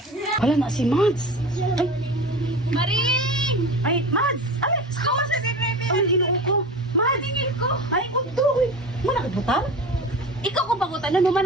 Wala na si Mads! Ay! Maring! Ay, Mads! Ay! Ako sa bebe. Ay, inuo ko! Mads! Tingin ko. Ay, kundo! Muna kagbutang? Ikaw ko bagutan na naman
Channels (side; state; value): both; normal; correlation 0.32